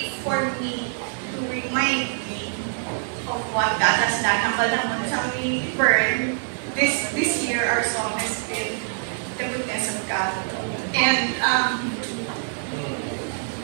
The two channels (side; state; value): left; silent; digital silence